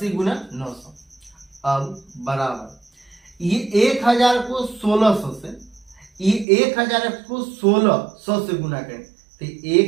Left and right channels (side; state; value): left; drops out; at 6.5 s